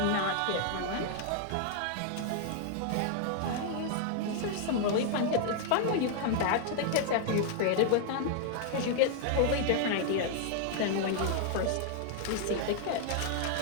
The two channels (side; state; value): both; different; correlation 0.00